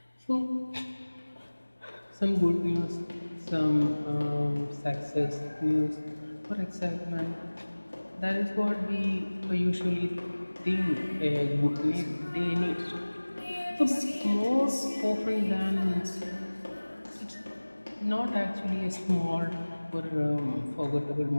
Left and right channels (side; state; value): both; inverted; correlation -1.00